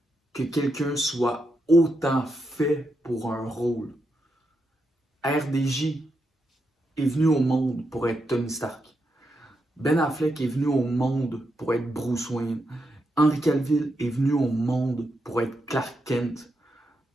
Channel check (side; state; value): both; normal; correlation 0.83